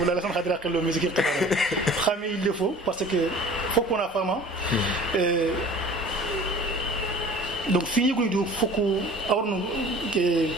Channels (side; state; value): both; normal; correlation 0.45